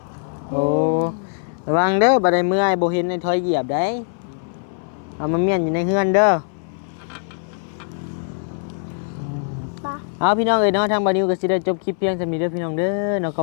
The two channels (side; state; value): right; silent; 61 dB below the other